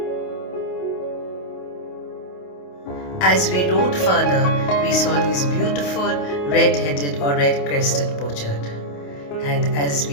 As we rode further, we saw these beautiful red-headed or red-crested pochard. And as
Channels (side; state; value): right; late; 28 ms